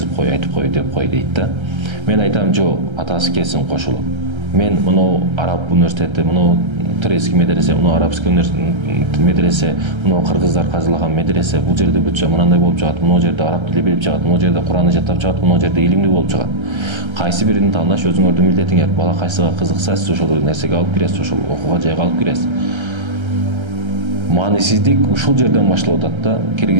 кой, айтып кой деп кой дейт да. Мен айтам, жок, атасы келсин кошулуп. Мен мынау Араб университети, мынау турецкий медресе, мына арабский медресе, мына кыргыздар казылаган медресе, бул жерде бүтчө мынандай болуп жагат, мына жерде араб тили билип жагат, мына жерде Куранды жаттап жагат, мына жерде илимдүү болуп жагат. Кайсы бирин тандаш өзүңөрдүн милдетиңер. Бала кайсыга кызыкса, сиз ошол нерсеге алып киресиз, ошол окууга жайга алып киресиз. Маанисиздик ушул жерден башталып атат да,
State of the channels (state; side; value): late; left; 1.3 ms